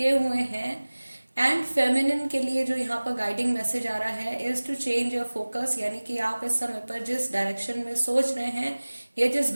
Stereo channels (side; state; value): both; inverted; correlation -1.00